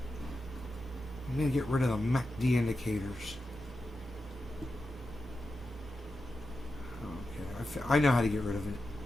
I'm going to get rid of the MACD indicators. Okay, I know how to get rid of it.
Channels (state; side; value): normal; both; correlation 0.90